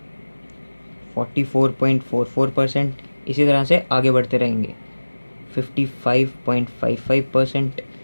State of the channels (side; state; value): both; inverted; correlation -1.00